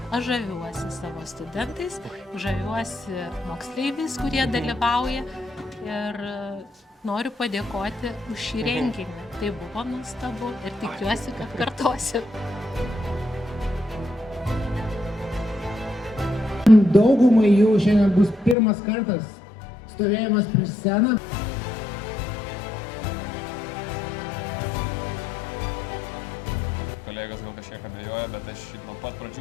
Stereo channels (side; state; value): right; drops out; at 18.6 s